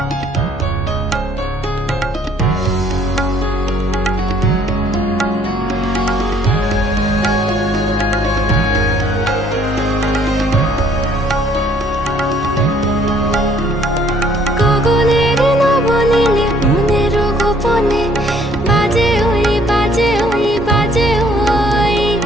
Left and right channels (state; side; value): normal; both; correlation 0.62